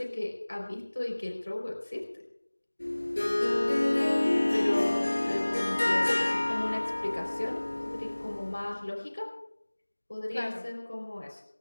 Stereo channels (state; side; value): inverted; both; correlation -1.00